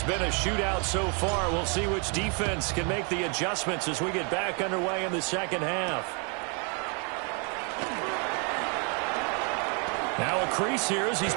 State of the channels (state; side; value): quieter; left; 36.5 dB